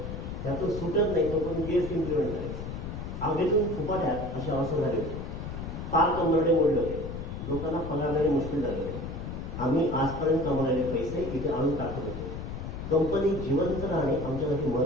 त्यातून सुटत नाही तोपर्यंत GST इम्प्लिमेंट झाले. आगीतून फुपाट्यात अशी अवस्था झाली होती. फार कंबरडे मोडले होते. लोकांना पगार देणे मुश्किल झाले होते. आम्ही आजपर्यंत कमवलेले पैसे इथे आणून टाकत होतो. कंपनी जिवंत राहणे आमच्यासाठी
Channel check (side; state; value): left; noise; rumble, 7 dB below the sound